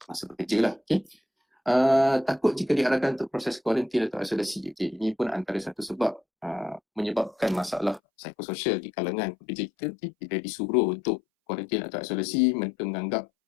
masa bekerja lah. Takut jika diarahkan untuk proses kuarantin atau isolasi. Ini pun antara satu sebab menyebabkan masalah psikososial di kalangan pekerja kita. Bila disuruh untuk kuarantin atau isolasi, mereka menganggap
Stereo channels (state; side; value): drops out; right; at 8.0 s